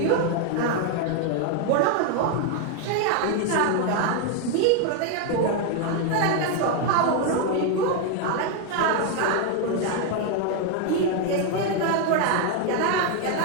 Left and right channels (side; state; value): both; different; correlation 0.01